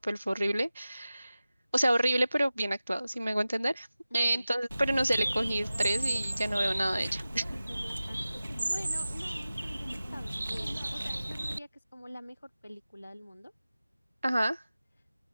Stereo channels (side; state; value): both; inverted; correlation -0.96